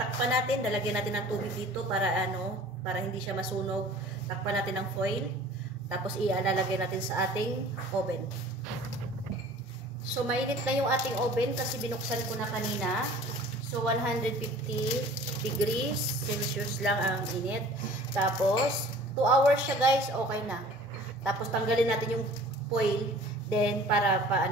natin, lalagyan natin ng tubig dito para para hindi siya masunog. Takpan natin ng foil. Tapos ilalagay natin sa ating oven. So mainit na yung ating oven kasi binuksan ko na kanina. So 150 degrees Celsius lang ang init. Tapos 2 hours siya guys, okay na. Tapos tanggalin natin yung foil. Then, para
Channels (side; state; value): both; normal; correlation 0.47